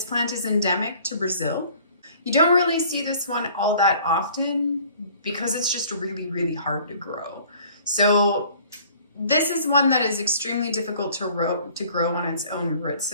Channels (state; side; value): inverted; both; correlation -0.53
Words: plant is endemic to Brazil. You don't really see this one all that often because it's just really hard to grow. So this is one that is extremely difficult to grow on its own root